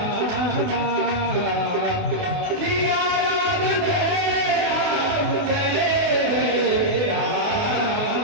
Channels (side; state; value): left; late; 28 ms